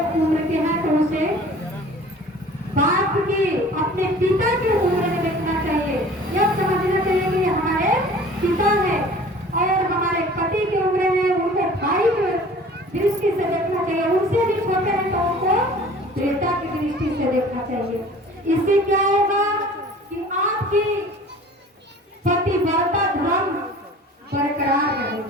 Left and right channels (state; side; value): normal; both; correlation 0.46